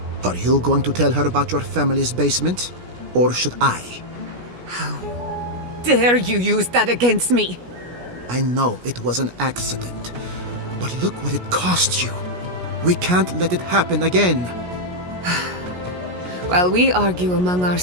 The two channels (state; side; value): late; left; 17 ms